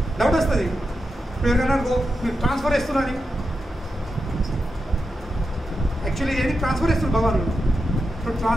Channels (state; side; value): normal; both; correlation 0.88